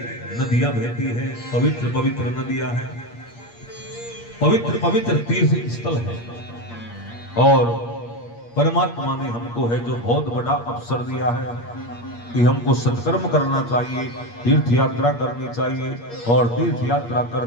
नदियां बहती है, पवित्र पवित्र नदियां हैं, पवित्र पवित्र तीर्थ स्थल है और परमात्मा ने हमको है जो बहुत बड़ा अवसर दिया है कि हमको सत्कर्म करना चाहिए, तीर्थ यात्रा करनी चाहिए और तीर्थ यात्रा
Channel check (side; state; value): right; late; 8.5 ms